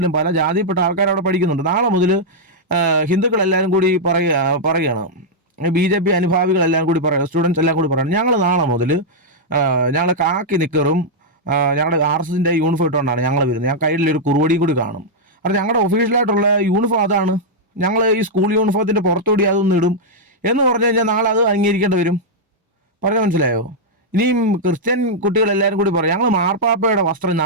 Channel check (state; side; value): normal; both; correlation -0.05